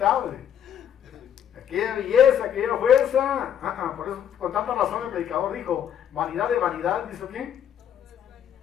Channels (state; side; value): quieter; right; 9.3 dB